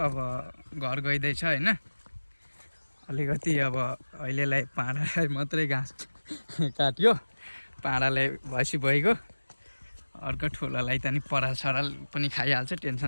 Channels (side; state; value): both; inverted; correlation -1.00